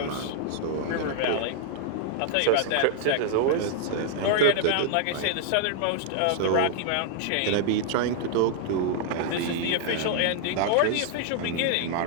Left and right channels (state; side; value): different; both; correlation 0.00